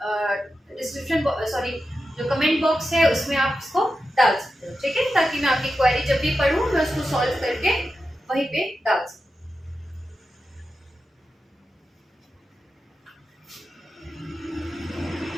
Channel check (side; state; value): both; normal; correlation 0.91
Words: डिस्क्रिप्शन सॉरी जो कमेंट बॉक्स है उसमें आप इसको डाल सकते हो, ठीक है, ताकि मैं आपकी क्वेरी जब भी पढ़ूं मैं उसको सॉल्व करके वहीं पे डाल सकूं।